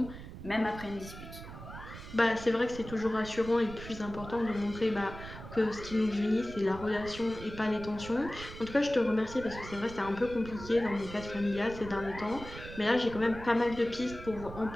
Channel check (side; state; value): right; noise; rumble, 13 dB below the sound